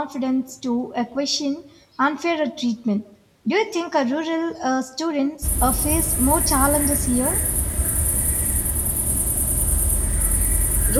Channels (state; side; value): identical; both; correlation 1.00